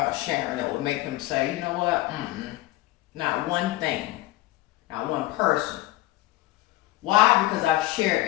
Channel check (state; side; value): quieter; right; 17.6 dB